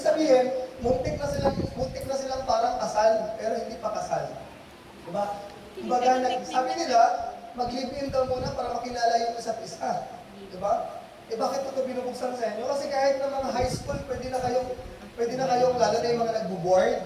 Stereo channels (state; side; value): identical; both; correlation 1.00